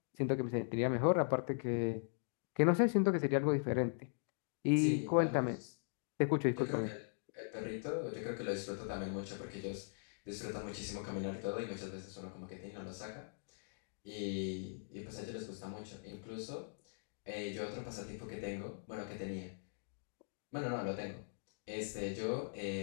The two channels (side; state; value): right; silent; digital silence